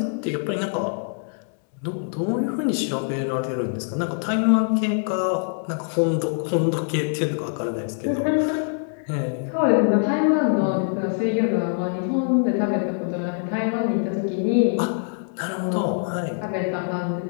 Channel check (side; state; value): right; silent; 63 dB below the other